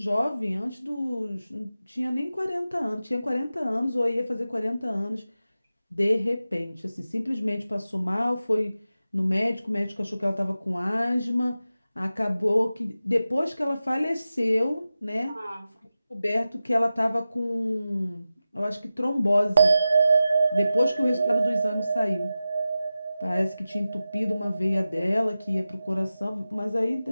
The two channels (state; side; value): inverted; both; correlation -0.93